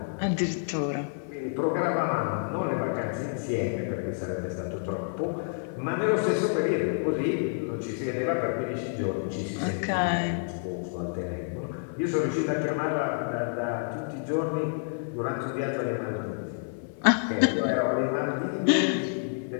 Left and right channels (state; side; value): silent; right; 55 dB below the other